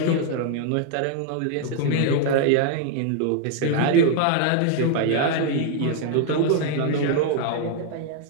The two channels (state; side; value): different; both; correlation 0.00